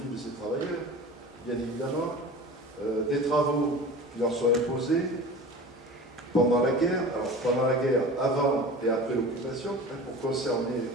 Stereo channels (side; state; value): both; normal; correlation 0.36